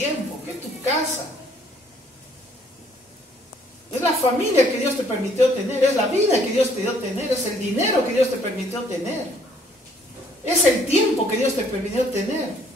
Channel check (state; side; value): normal; both; correlation 0.63